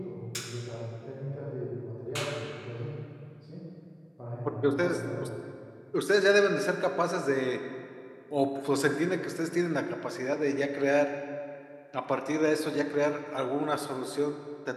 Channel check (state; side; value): identical; both; correlation 1.00